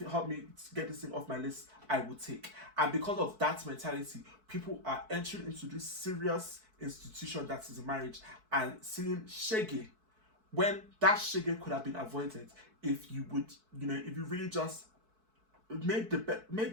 help me get this thing off my list, I will take. And because of that mentality, people are entering into this serious institution that is marriage and seeing shege, when that shege could have been avoided if you would, if you really just made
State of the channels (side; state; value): left; late; 4.6 ms